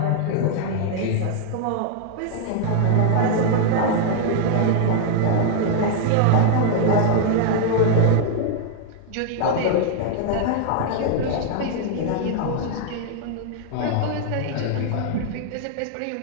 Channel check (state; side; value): different; both; correlation 0.00